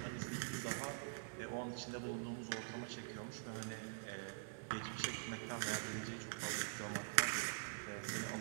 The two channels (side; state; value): left; silent; digital silence